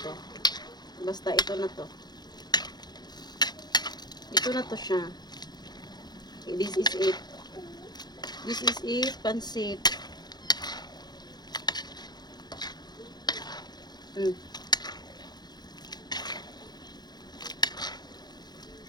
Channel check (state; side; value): late; right; 0.20 ms